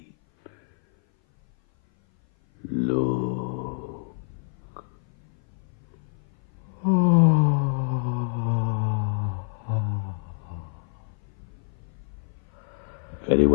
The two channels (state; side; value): silent; right; 57 dB below the other